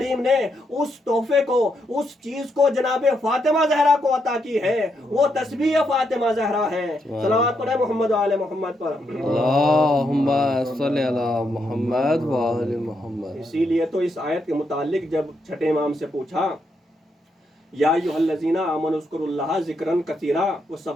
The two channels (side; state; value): both; normal; correlation 0.79